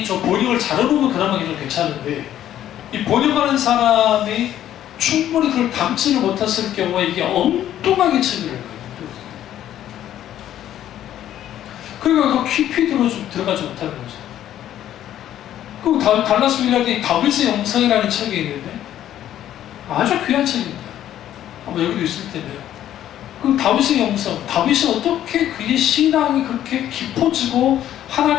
저 번역을 잘해보면 그나마 좀 괜찮은데 이 번역하는 사람이 충분히 그걸 담지를 못했을 경우에 이게 엉뚱하게 책을 읽어요. 그러니까 그 깊이 들어가지 못하는 거죠. 그 달라스 윌라드의 다윗의 영성이라는 책이 있는데 아주 귀한 책입니다. 아마 여기도 있을 텐데요. 그 다윗의 영성, 다윗이 어떻게 그의 신앙이 그렇게 깊어지고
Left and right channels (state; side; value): quieter; right; 11.7 dB